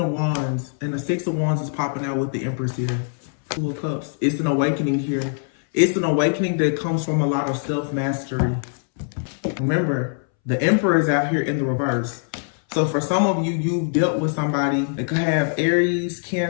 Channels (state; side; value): silent; right; 64 dB below the other